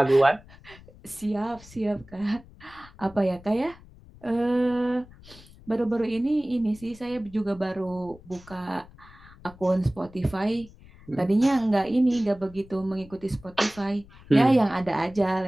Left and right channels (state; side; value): noise; left; rumble, 22 dB below the sound